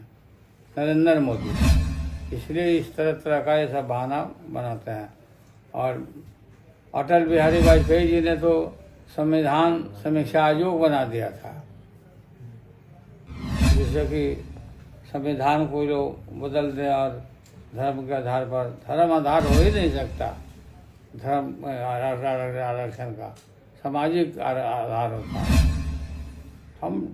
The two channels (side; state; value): both; identical; correlation 1.00